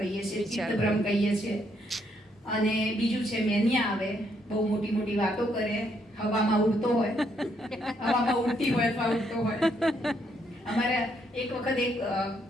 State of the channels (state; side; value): normal; both; correlation 0.73